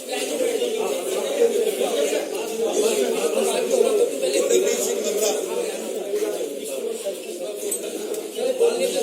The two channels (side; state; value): both; identical; correlation 1.00